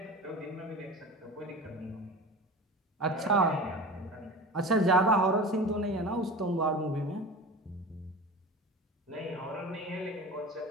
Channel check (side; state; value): both; normal; correlation 0.33